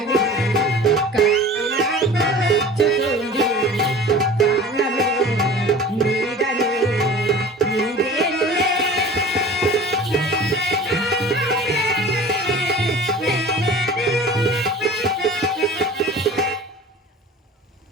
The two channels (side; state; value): both; normal; correlation 0.41